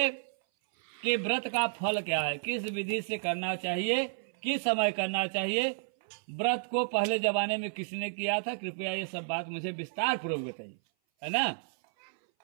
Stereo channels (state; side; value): silent; left; 57 dB below the other